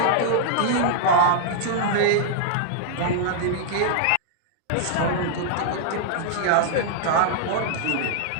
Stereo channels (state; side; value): different; both; correlation -0.01